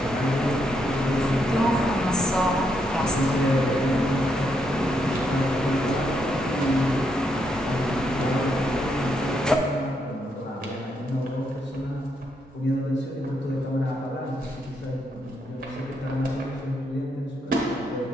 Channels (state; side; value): normal; both; correlation 0.78